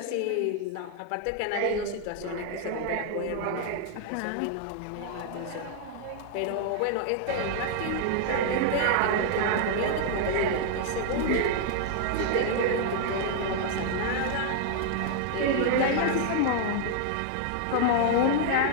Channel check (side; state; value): both; different; correlation 0.00